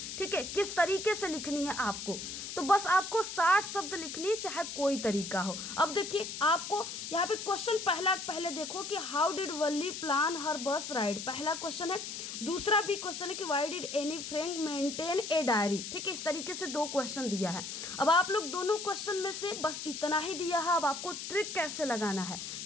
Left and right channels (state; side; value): noise; left; hiss, 7 dB below the sound